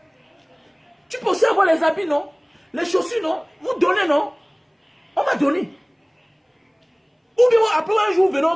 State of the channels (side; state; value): both; identical; correlation 1.00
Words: Tu peux aussi avoir les habits, non? Les chaussures, non? Vous donnez, non? On va donner. Ou bien après un jour, venons